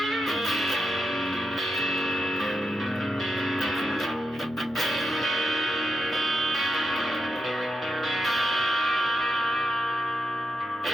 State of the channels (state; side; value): normal; both; correlation 0.85